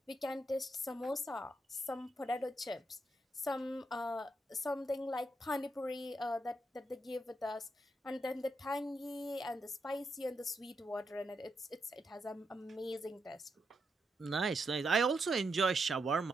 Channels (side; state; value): both; normal; correlation 0.82